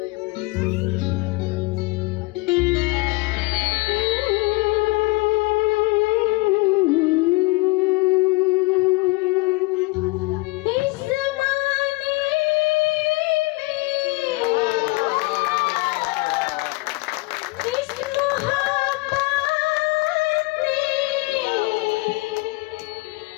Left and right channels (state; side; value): quieter; right; 24.2 dB